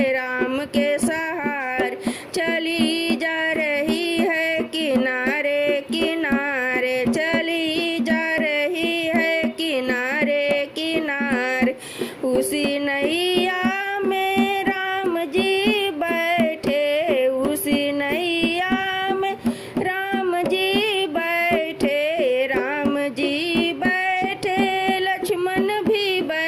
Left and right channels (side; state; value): both; identical; correlation 1.00